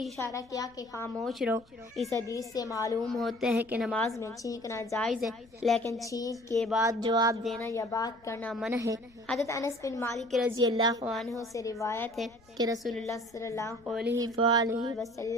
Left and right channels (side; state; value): left; noise; rumble, 29 dB below the sound